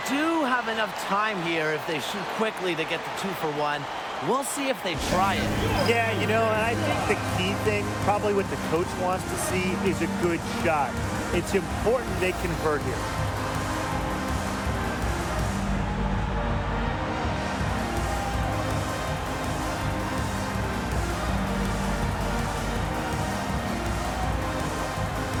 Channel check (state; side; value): identical; both; correlation 1.00